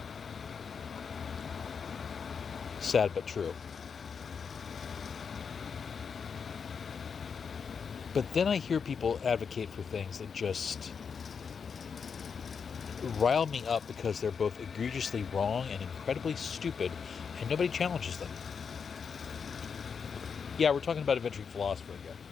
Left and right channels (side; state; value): right; quieter; 6.2 dB